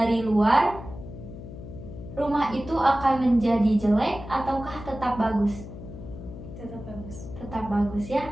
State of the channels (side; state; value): left; noise; hum, 12 dB below the sound